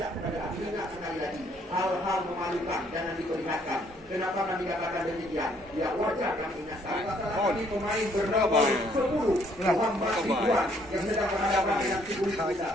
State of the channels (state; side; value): normal; both; correlation 0.66